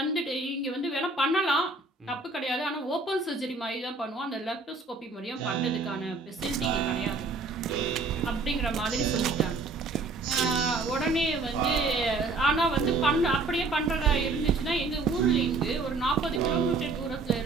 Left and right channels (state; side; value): quieter; left; 3.7 dB